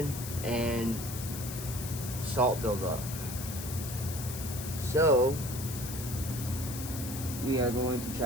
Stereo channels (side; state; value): left; noise; hiss, 9 dB below the sound